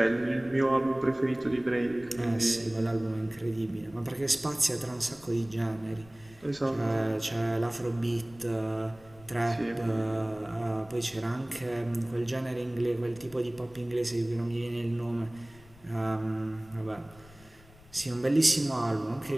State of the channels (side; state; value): left; noise; rumble, 23 dB below the sound